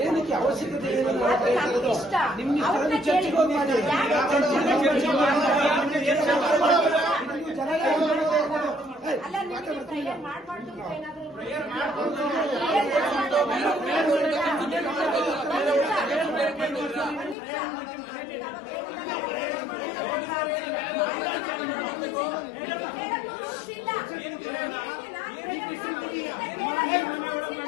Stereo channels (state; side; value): drops out; right; at 17.4 s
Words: ಏನಕ್ಕೆ ಅವಶ್ಯಕತೆ ಇಷ್ಟ ಅವ್ರನ್ನ ಕೇಳಿ ಅಲ್ಲ ನಿಮಗೆ ಪ್ರೇಯರ್ ಮಾಡಬಾರ್ದು ಏನಾದ್ರು